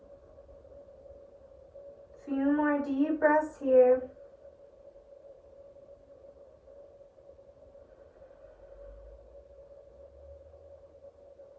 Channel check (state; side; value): identical; both; correlation 1.00